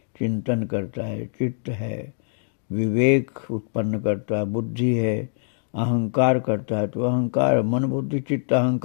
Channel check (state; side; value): silent; right; digital silence